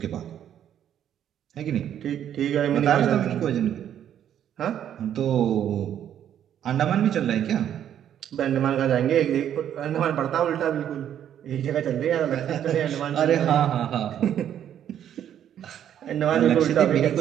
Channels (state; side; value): quieter; left; 10.1 dB